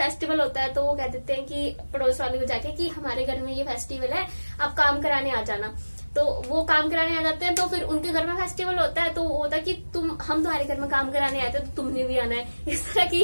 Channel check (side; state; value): both; inverted; correlation -1.00